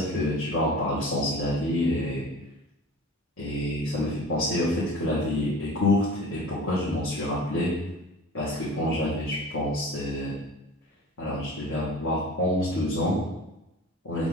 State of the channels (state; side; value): normal; both; correlation 0.40